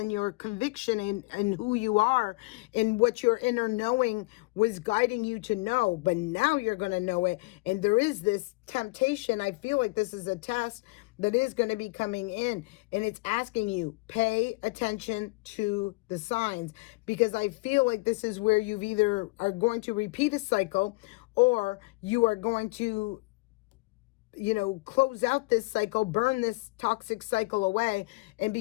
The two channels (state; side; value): quieter; right; 24.8 dB